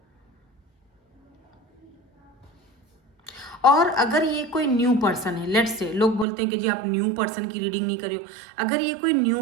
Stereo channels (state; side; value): drops out; left; at 6.2 s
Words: और अगर ये कोई न्यू पर्सन है, लेट्स से, लोग बोलते हैं कि जी आप न्यू पर्सन की रीडिंग नहीं करियो, अगर ये कोई